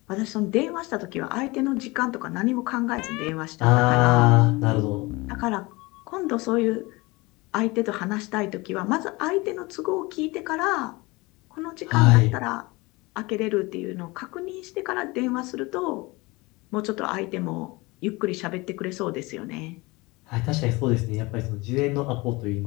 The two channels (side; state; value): right; quieter; 23.6 dB